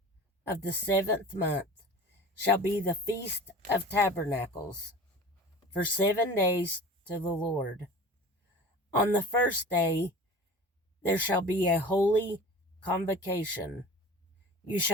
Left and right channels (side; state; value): both; normal; correlation 0.38